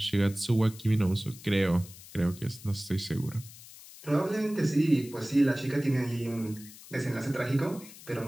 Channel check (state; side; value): noise; left; hiss, 18 dB below the sound